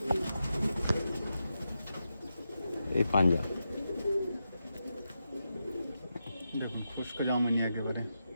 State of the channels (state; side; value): inverted; both; correlation -0.88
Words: এই পাঞ্জা। দেখুন খুশকো জামুনি একেবারে,